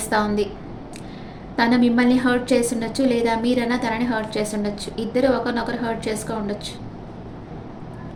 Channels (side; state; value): both; identical; correlation 1.00